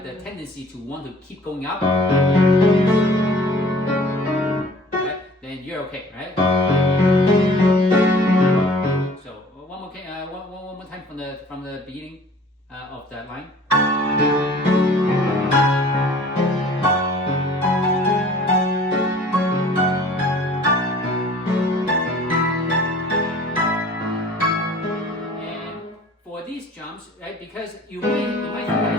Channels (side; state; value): both; normal; correlation 0.49